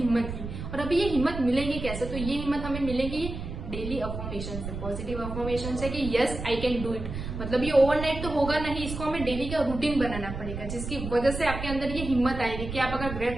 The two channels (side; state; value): right; noise; rumble, 7 dB below the sound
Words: की। और अभी ये हिम्मत मिलेगी कैसे? तो ये हिम्मत हमें मिलेगी डेली अफर्मेशन से, पॉजिटिव अफर्मेशन से कि yes I can do it. मतलब ये ओवरनाइट तो होगा नहीं, इसको हमें डेली का रूटीन बनाना पड़ेगा, जिसकी वजह से आपके अंदर ये हिम्मत आएगी कि आप अगर